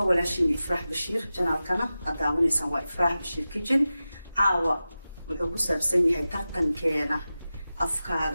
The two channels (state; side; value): inverted; both; correlation -0.94